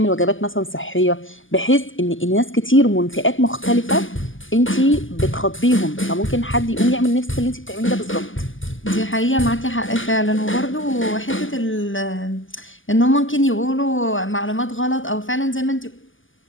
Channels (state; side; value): late; right; 0.58 ms